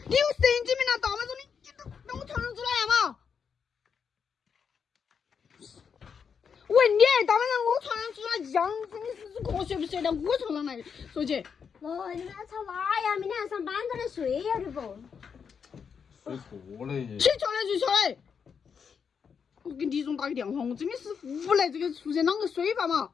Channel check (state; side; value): quieter; right; 6.6 dB